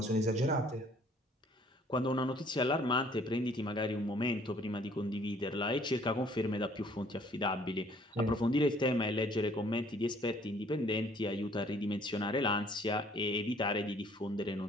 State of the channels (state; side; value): normal; both; correlation 0.59